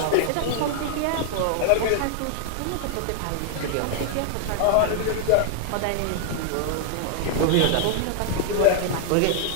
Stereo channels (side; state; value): both; different; correlation -0.01